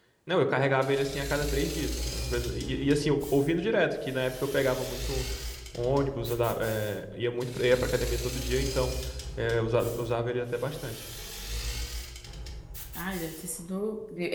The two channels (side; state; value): both; identical; correlation 1.00